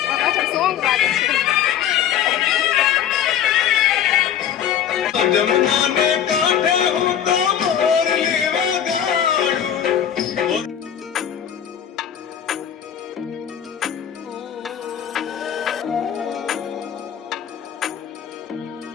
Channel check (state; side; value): quieter; right; 9.5 dB